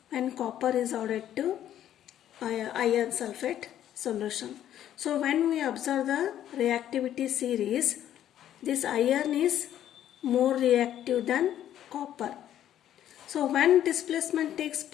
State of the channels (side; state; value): right; quieter; 11.2 dB